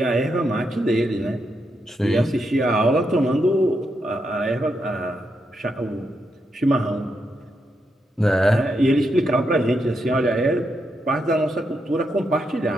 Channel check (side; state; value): both; normal; correlation 0.82